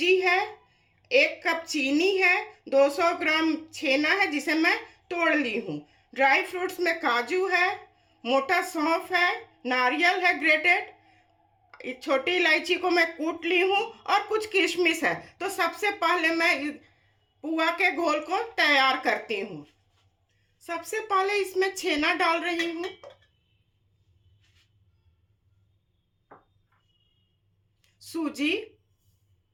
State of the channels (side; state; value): both; identical; correlation 1.00